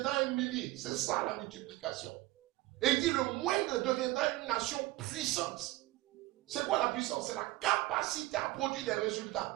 un millier. C'est ça la multiplication. Et il dit, le moindre deviendra une nation puissante. C'est quoi la puissance? C'est la capacité à produire des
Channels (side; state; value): left; quieter; 19.1 dB